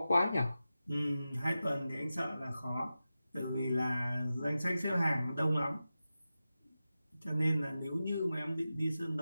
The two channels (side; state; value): both; inverted; correlation -0.93